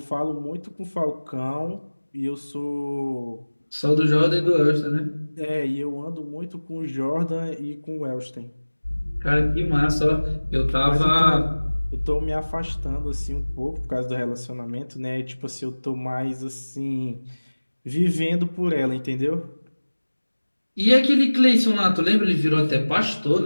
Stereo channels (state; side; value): inverted; both; correlation -1.00